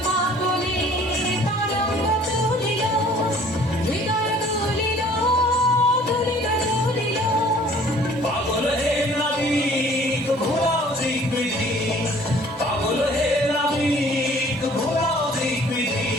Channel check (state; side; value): normal; both; correlation 0.53